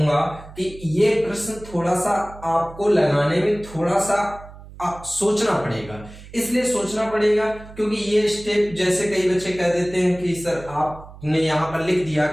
कि ये प्रश्न थोड़ा सा आपको लगाने में थोड़ा सा सोचना पड़ेगा। इसलिए सोचना पड़ेगा क्योंकि ये स्टेप, जैसे कई बच्चे कह देते हैं कि सर आपने यहाँ पर लिख दिया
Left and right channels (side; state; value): right; noise; hum, 18 dB below the sound